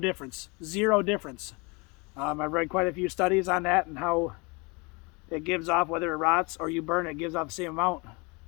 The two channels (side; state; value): right; quieter; 28.7 dB